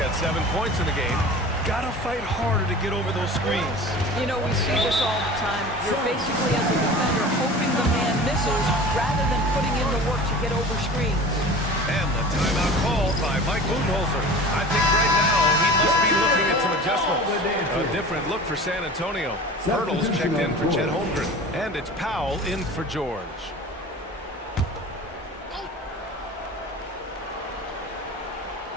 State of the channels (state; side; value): normal; both; correlation 0.38